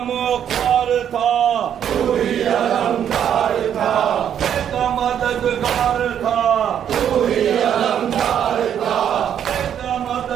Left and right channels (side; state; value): left; quieter; 9.3 dB